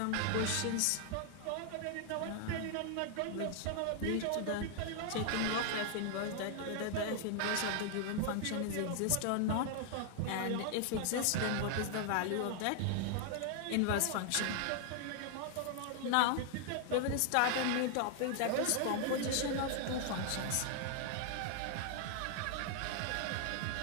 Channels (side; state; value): both; different; correlation 0.00